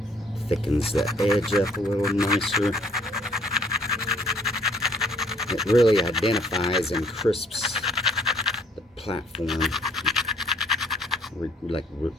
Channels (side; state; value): both; normal; correlation 0.62